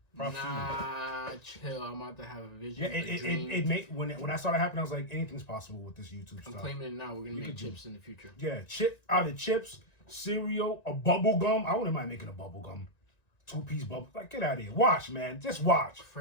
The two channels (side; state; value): right; late; 1.9 ms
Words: Nah, chill. I'm about to have a vision. Yeah, it made when I saw that happen, I was like, anything's possible with this YouTube I'm stuff. claiming it now. We're gonna make chips in the future. Yeah, out of chips, cereal, a bubble gum. I wouldn't mind making a bubble gum, 2-piece bubble. Like, get out of here. Watch, man. Just watch.